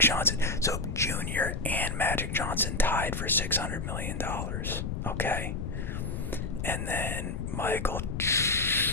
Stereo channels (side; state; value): left; noise; rumble, 3 dB below the sound